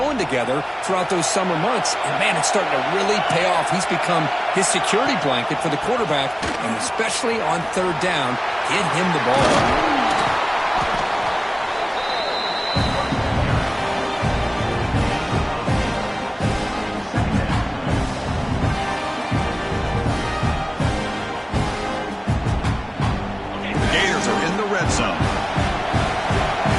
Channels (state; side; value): identical; both; correlation 1.00